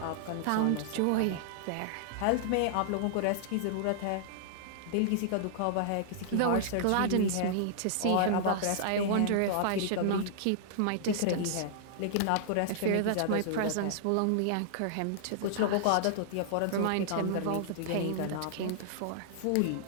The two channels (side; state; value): both; different; correlation -0.01